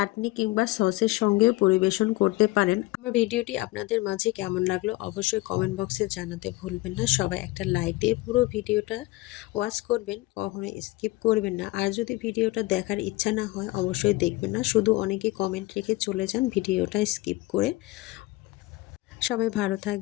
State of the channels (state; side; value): quieter; right; 20.1 dB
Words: কিংবা সসের সঙ্গেও পরিবেশন করতে পারেন। আমার ভিডিওটি আপনাদের মাঝে কেমন লাগলো অবশ্যই কমেন্ট বক্সে জানাতে ভুলবেন না। সবাই একটা লাইক দিয়ে পুরো ভিডিওটা ওয়াচ করবেন, কখনো স্কিপ করবেন না। আর যদি ভিডিওটা দেখার ইচ্ছা না হয় অবশ্যই দেখবেন না, শুধু অনেকেই কমেন্ট রেখে চলে যান ভিডিওটা স্কিপ করে। সবাই ভালো